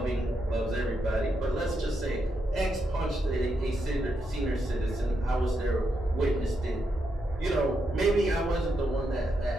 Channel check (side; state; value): both; normal; correlation 0.82